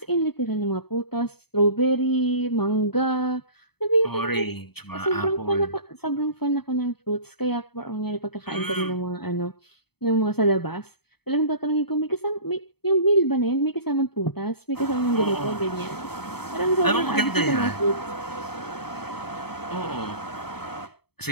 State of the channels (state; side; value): late; right; 0.97 ms